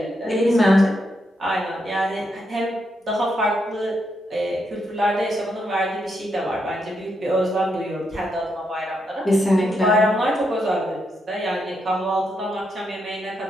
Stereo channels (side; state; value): both; normal; correlation 0.80